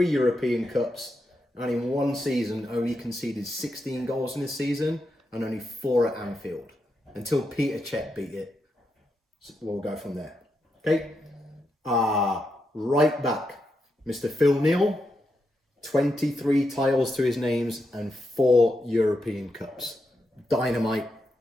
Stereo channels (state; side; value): normal; both; correlation 0.84